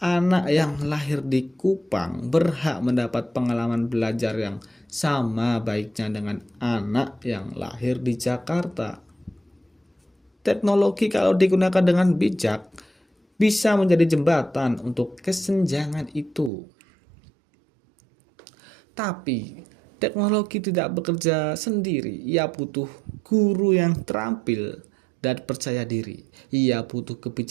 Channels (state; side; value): drops out; left; at 16.5 s